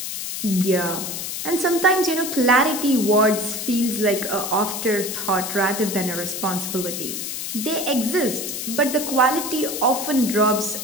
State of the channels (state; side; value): noise; left; hiss, 5 dB below the sound